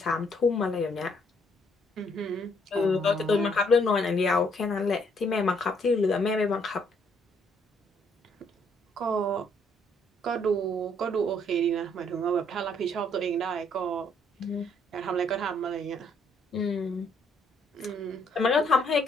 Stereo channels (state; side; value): normal; both; correlation 0.68